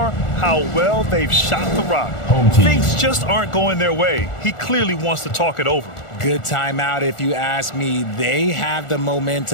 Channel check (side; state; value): right; late; 1.4 ms